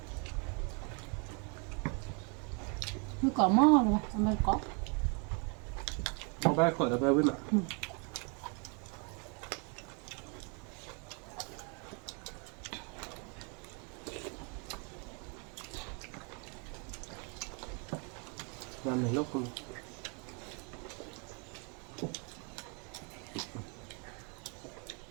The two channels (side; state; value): left; quieter; 35.8 dB